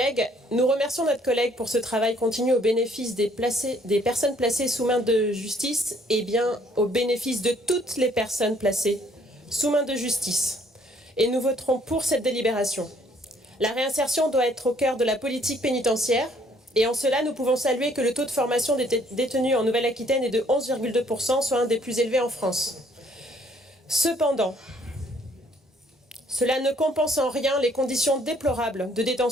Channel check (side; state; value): both; normal; correlation 0.63